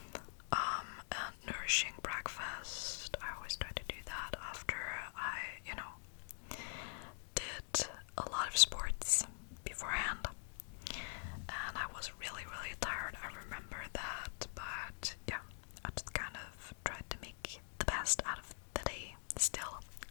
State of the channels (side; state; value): right; silent; digital silence